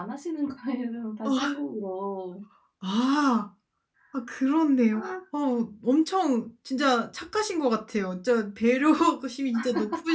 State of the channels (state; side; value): identical; both; correlation 1.00